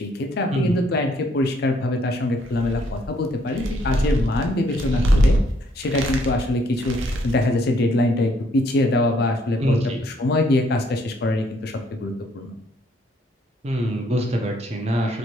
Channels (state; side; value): normal; both; correlation 0.68